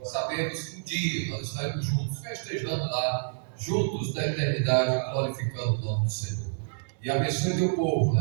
Sabemos que um dia nós estaremos juntos, festejando lá, juntos na eternidade, glorificando o nome do Senhor. E abençoe Teu povo,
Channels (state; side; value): silent; left; digital silence